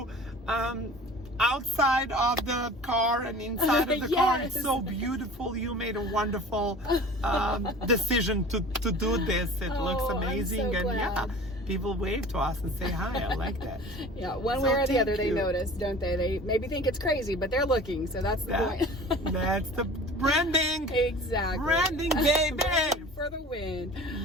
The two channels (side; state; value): both; normal; correlation 0.42